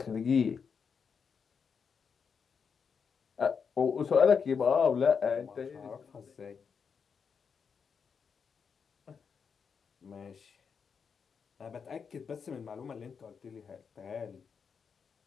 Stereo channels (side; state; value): right; quieter; 6.2 dB